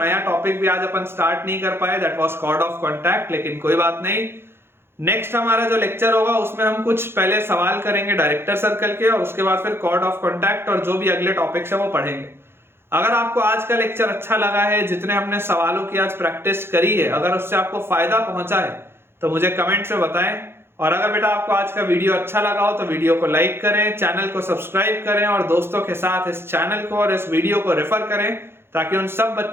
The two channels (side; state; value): left; late; 0.11 ms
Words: टॉपिक भी आज अपन स्टार्ट नहीं कर पाए, that was chord of contact. लेकिन कोई बात नहीं, नेक्स्ट हमारा जो लेक्चर होगा उसमें हम कुछ पहले सवाल करेंगे डायरेक्टर सर्कल के और उसके बाद फिर कॉर्ड ऑफ कॉन्टैक्ट और जो भी अगले टॉपिक्स है वो पढ़ेंगे। अगर आपको आज का लेक्चर अच्छा लगा है, जितने हमने सवालों की आज प्रैक्टिस करी है, अगर उससे आपको फायदा पहुंचा है तो मुझे कमेंट से बताएं। और अगर बेटा आपको आज का वीडियो अच्छा लगा हो तो वीडियो को लाइक करें, चैनल को सब्सक्राइब करें और दोस्तों के साथ इस चैनल को और इस वीडियो को रेफर करें ताकि उन सब